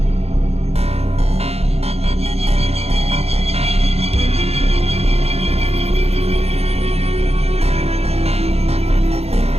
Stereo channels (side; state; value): left; late; 0.30 ms